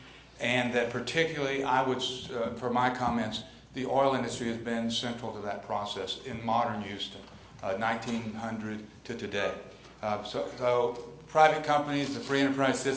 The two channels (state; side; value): identical; both; correlation 1.00